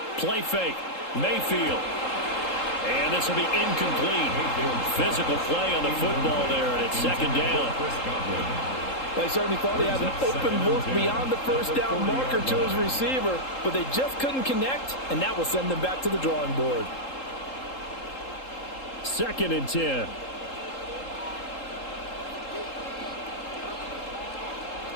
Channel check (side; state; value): right; late; 3.8 ms